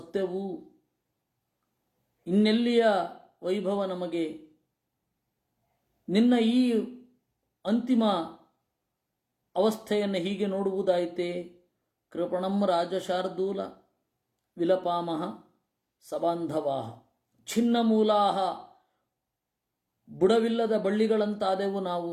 ಇನ್ನೆಲ್ಲಿಯ ವೈಭವ ನಮಗೆ? ನಿನ್ನ ಈ ಅಂತಿಮ ಅವಸ್ಥೆಯನ್ನು ಹೀಗೆ ನೋಡುವುದಾಯಿತೆ? ಕೃಪಣಂ ರಾಜಶಾರ್ದೂಲ ವಿಲಪಾಮಹ ಸಬಾಂಧವಾಹ ಛಿನ್ನಮೂಲಾಹ. ಬುಡವಿಲ್ಲದ ಬಳ್ಳಿಗಳಂತಾದೆವು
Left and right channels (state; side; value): identical; both; correlation 1.00